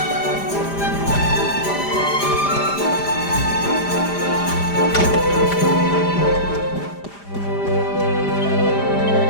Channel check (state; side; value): late; right; 5.0 ms